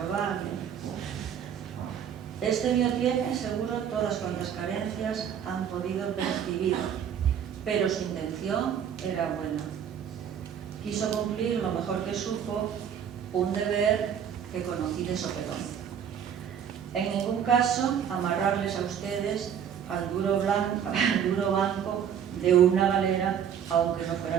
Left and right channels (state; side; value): quieter; left; 8.5 dB